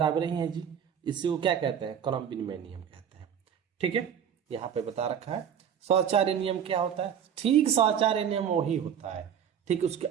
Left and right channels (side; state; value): left; quieter; 8.6 dB